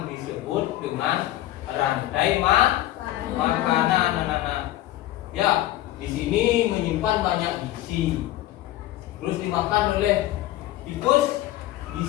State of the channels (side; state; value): right; quieter; 14.9 dB